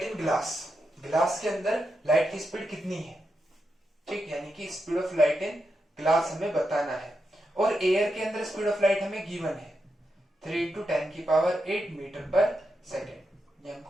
in glass, glass के अंदर लाइट की स्पीड कितनी है। ठीक, यानी कि speed of light in glass हमें बताना है, और एयर के अंदर स्पीड ऑफ लाइट हमें गिवन है 3 × 10⁸ मीटर पर सेकेंड। ये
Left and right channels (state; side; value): normal; both; correlation 0.86